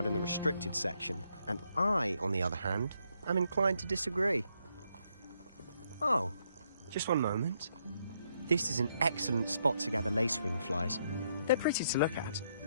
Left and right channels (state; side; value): inverted; both; correlation -0.75